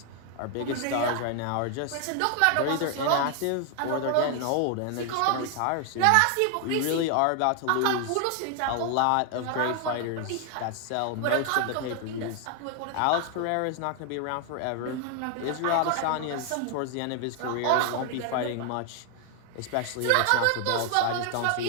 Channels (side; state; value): both; different; correlation 0.00